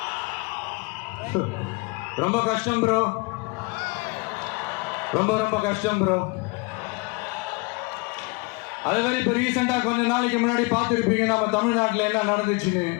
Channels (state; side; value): quieter; right; 28.6 dB